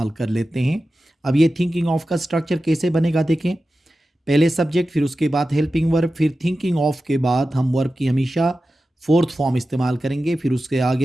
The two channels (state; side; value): normal; both; correlation 0.93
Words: कर लेते हैं। अब ये थिंकिंग ऑफ का स्ट्रक्चर कैसे बनेगा देखें। पहले सब्जेक्ट, फिर उसके बाद हेल्पिंग वर्ब, फिर थिंकिंग ऑफ के बाद हम वर्ब की हमेशा फोर्थ फॉर्म इस्तेमाल करेंगे, फिर उसके